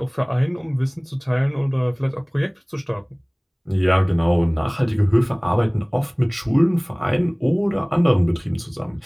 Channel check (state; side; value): identical; both; correlation 1.00